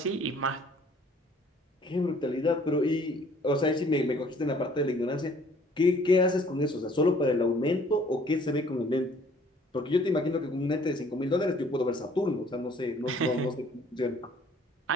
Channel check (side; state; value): both; normal; correlation 0.57